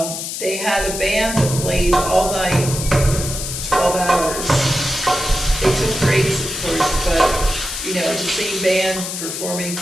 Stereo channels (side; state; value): left; noise; hiss, 5 dB below the sound